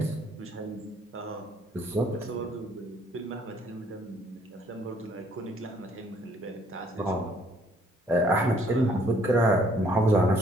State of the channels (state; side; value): normal; both; correlation 0.63